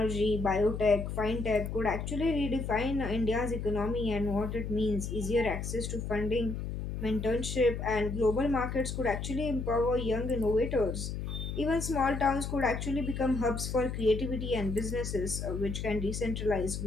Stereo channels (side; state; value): left; noise; hum, 5 dB below the sound